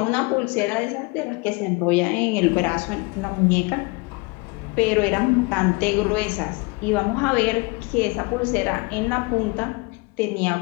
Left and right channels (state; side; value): quieter; right; 27.3 dB